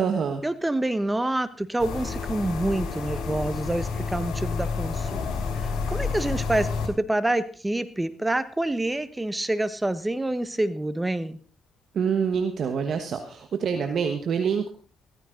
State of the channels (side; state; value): both; normal; correlation 0.88